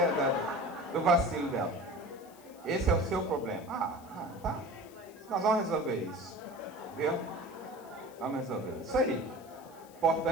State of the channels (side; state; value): left; noise; hiss, 24 dB below the sound